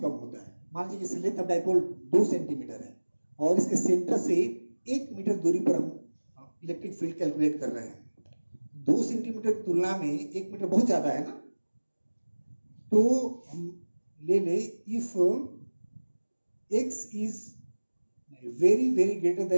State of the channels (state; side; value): inverted; both; correlation -1.00